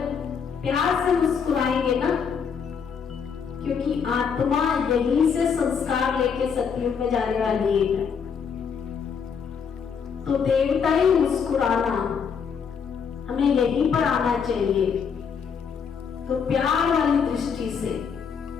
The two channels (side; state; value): right; quieter; 6.6 dB